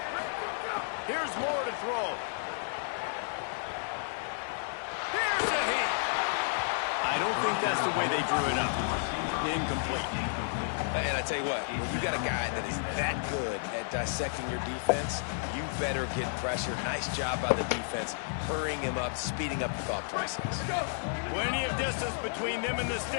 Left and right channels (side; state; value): right; silent; digital silence